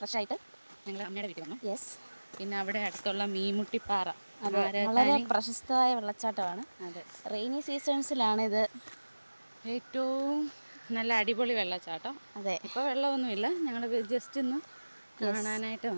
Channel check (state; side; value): inverted; both; correlation -1.00